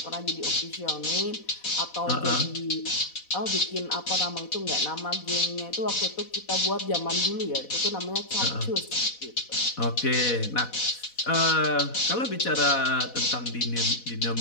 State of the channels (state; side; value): late; right; 4.1 ms